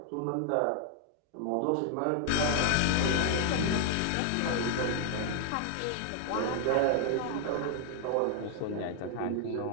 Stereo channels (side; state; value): both; different; correlation 0.00